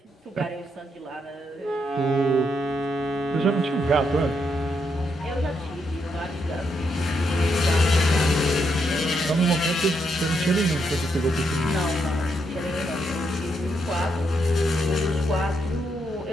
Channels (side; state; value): both; normal; correlation 0.79